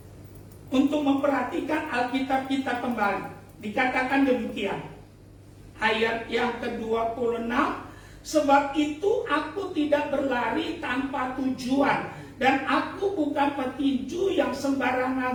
untuk memperhatikan Alkitab kita kembali. Dikatakan demikian, ayat yang ke-26, sebab itu aku tidak berlari tanpa tujuan, dan aku bukan petinju yang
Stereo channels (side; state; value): both; identical; correlation 1.00